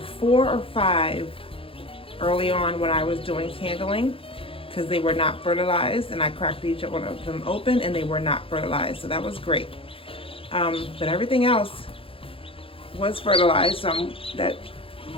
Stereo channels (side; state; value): right; late; 0.27 ms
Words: 4 or 5 early on when I was doing candling because they were not fertilized, and I cracked each one of them open and they were not fertilized, so that was great. But everything else was fertilized. Oh